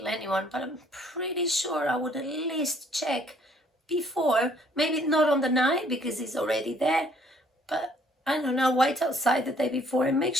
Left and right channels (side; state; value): both; normal; correlation 0.62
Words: anyone, but I'm pretty sure I would at least check before. Maybe not on the night because he's already there, but I don't know, wait outside the day before and make